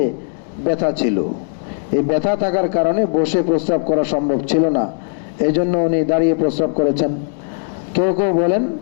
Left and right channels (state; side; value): silent; right; digital silence